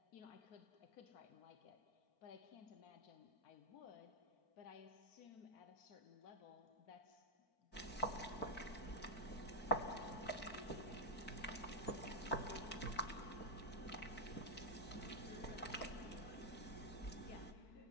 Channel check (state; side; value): late; right; 4.5 ms